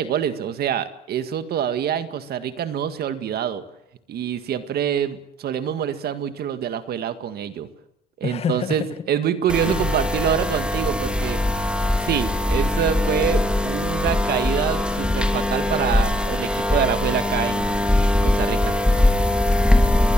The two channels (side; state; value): both; normal; correlation 0.64